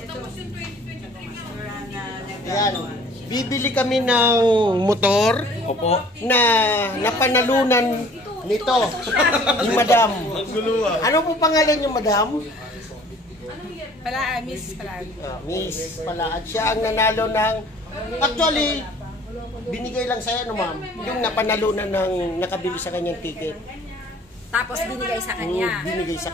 Ayan. Bibili kami ng motor. Opo. Na napanalunan nito. Yung madam. Ano po pangalan yung madam? Miss Palaan. Miss Palaan. Siya ang nanalo ng... Actually, binigay lang sa'yo, no ma'am? Yung napanalunan ng nakabili sa kanyang ticket. Tapos binigay sa kanya. Binigay sa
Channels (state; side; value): normal; both; correlation 0.52